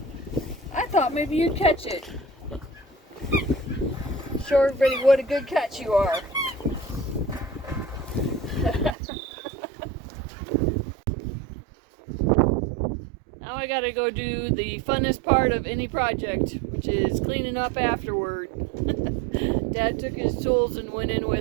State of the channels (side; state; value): left; drops out; at 9.0 s